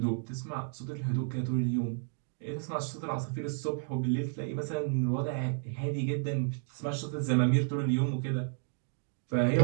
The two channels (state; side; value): silent; left; 56 dB below the other